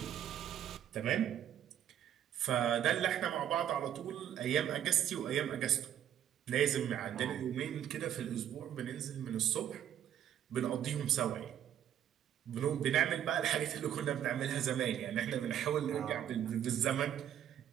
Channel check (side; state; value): left; quieter; 10.3 dB